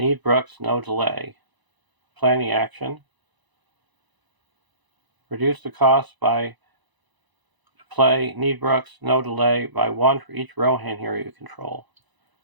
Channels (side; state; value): left; late; 1.0 ms